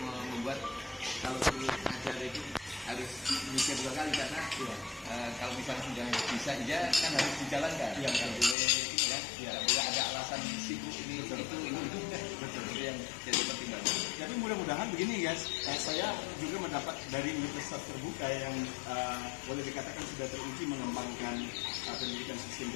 membuat kalau ngajar itu harus mikir 2 kali karena kalau misalnya sudah bisa aja kan harus dijalankan. Nggak boleh ini kan, nggak boleh ada alasan sibuk ini itu yang jadi pertimbangan. Jadi mudah-mudahan begini guys, saya juga mendapat dari universitas terbuka yang boleh dikatakan sudah teruji mengembangkan pendidikan sistem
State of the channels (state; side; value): drops out; right; at 8.6 s